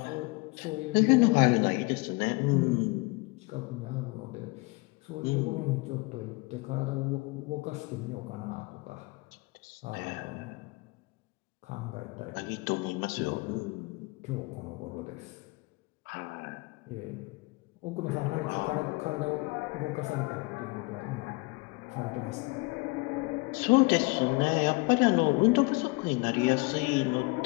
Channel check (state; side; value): quieter; right; 25.9 dB